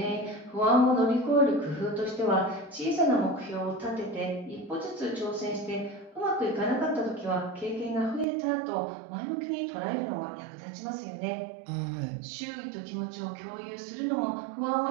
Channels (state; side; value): drops out; left; at 8.2 s